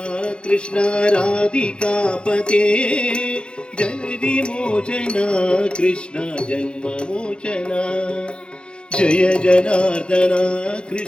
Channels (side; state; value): right; late; 0.054 ms